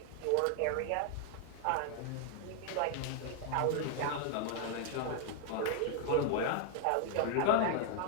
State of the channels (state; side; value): different; both; correlation 0.00